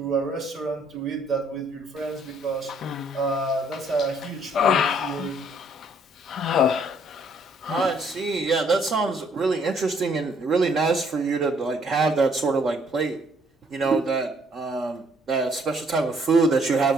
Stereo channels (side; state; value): both; normal; correlation 0.65